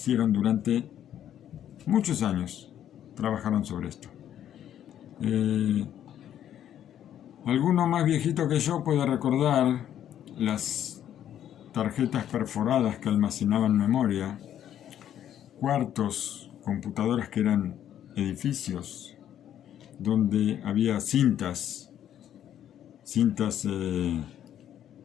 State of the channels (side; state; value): right; quieter; 10.6 dB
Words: durante muchos años. Trabajaron sobre esto. Alguno más viejito que yo puede recordar las tarjetas perforadas que almacenaban memoria, cuartos, computadoras que eran edificios, donde había cintas cintas,